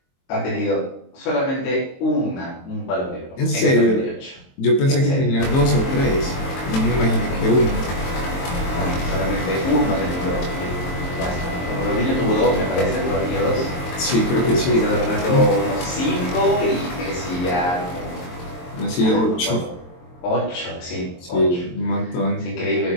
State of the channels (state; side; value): late; right; 22 ms